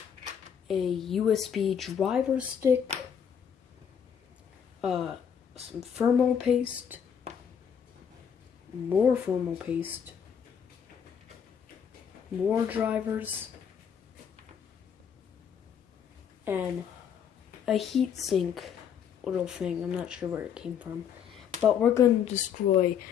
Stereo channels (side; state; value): right; quieter; 7.9 dB